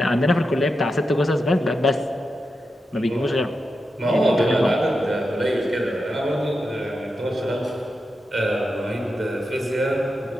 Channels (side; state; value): both; normal; correlation 0.88